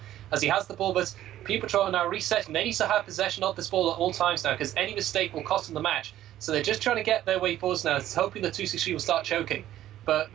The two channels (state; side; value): quieter; left; 12.9 dB